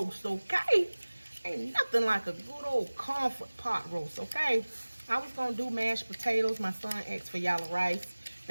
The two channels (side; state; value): both; inverted; correlation -1.00